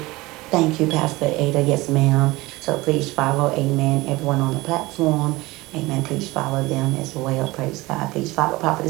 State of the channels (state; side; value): quieter; left; 20.7 dB